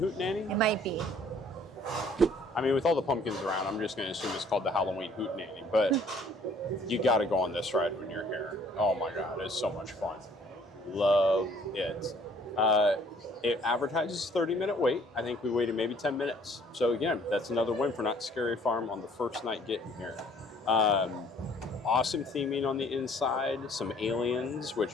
It might be. I mean, with all the pumpkins around, I'm just going to assume it's called the Halloween Hootenanny. But you got to go on this ride when you're here. Oh my God, it's so much fun. Love it. It advertises 30-minute wait. I think we waited maybe 10 minutes. So again, that's another win for Not Scary Farm on the first night getting here. Awesome theming on the inside, some aliens,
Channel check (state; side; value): normal; both; correlation 0.58